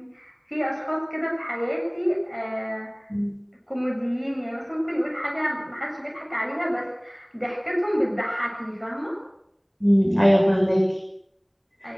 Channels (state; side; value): identical; both; correlation 1.00